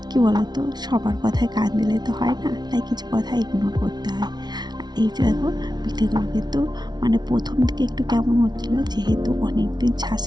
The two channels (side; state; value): left; late; 0.20 ms